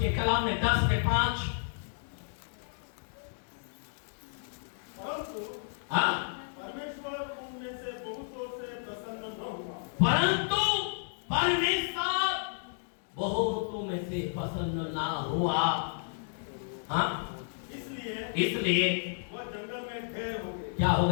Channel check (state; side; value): silent; right; digital silence